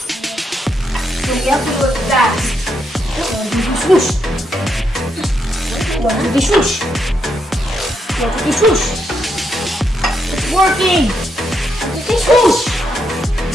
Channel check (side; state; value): both; normal; correlation 0.80